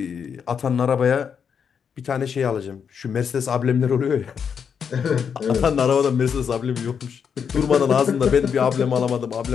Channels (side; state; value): right; quieter; 7.0 dB